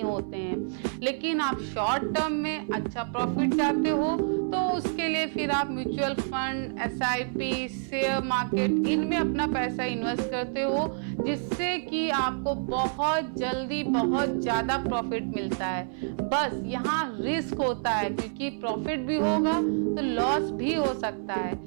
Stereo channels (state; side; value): silent; left; 57 dB below the other